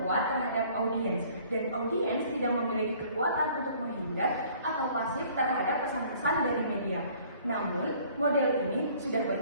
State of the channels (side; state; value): both; inverted; correlation -0.55